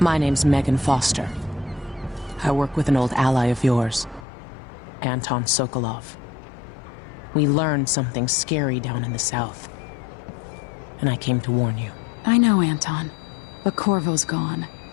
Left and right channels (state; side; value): drops out; right; at 4.2 s